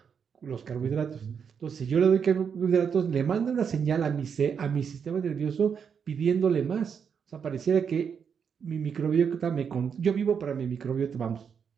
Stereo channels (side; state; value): left; quieter; 6.9 dB